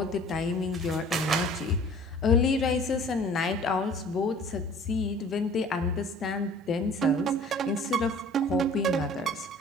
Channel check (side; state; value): both; normal; correlation 0.49